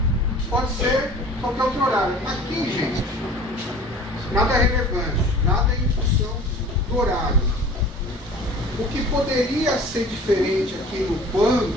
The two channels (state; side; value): normal; both; correlation 0.44